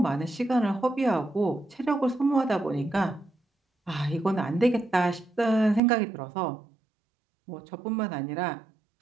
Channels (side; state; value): left; drops out; at 5.8 s